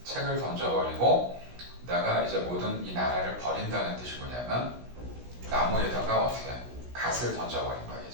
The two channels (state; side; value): late; left; 16 ms